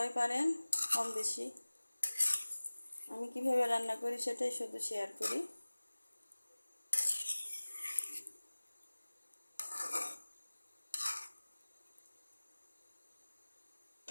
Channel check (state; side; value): inverted; both; correlation -1.00